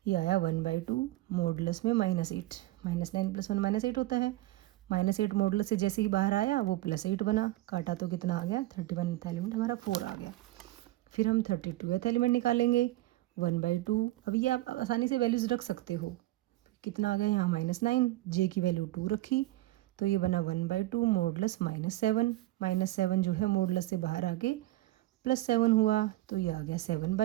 ये आया 1/2 मॉडुलस में -8। -9 + 1 -8 होता है। -8 मॉडुलस से जैसे ही बाहर आया वो +8 बना, काटा तो कितना आ गया? 31th एलिमेंट हमारा 4 आ गया। फिर हम 32th एलिमेंट निकालेंगे। 1/2, अब ये आप आसानी से वैल्यूज़ रख सकते हो। कितना आ गया यहाँ? -9, जे की वैल्यू 2 रखी तो ये बना 1/2 मॉडुलस -7। -7 जो है मॉडुलस से बाहर आके +7 हुआ तो ये आ गया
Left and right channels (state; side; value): quieter; left; 17.1 dB